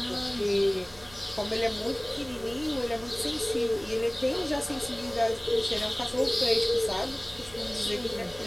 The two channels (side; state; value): right; noise; hum, 22 dB below the sound